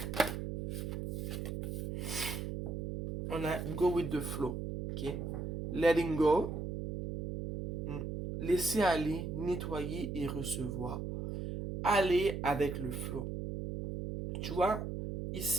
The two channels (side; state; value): right; noise; hum, 4 dB below the sound